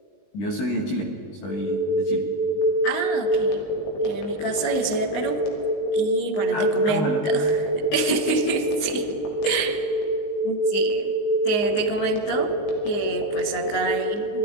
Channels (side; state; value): right; late; 20 ms